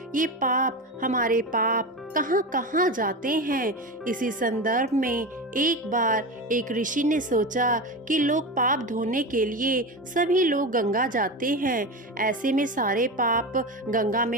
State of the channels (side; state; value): both; normal; correlation 0.23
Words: ये हमारे पाप कहाँ कहाँ जाते हैं। इसी संदर्भ में एक बार एक ऋषि ने सोचा कि लोग पाप धोने के लिए सभी लोग गंगा जाते हैं, ऐसे में सारे पाप गंगा में